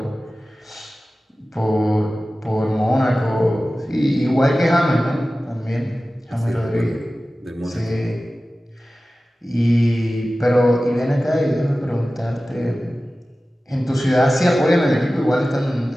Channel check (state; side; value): normal; both; correlation 0.96